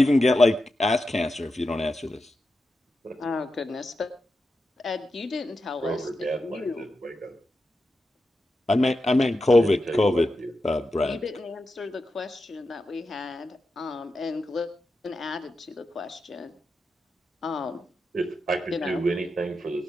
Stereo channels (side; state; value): both; normal; correlation 0.89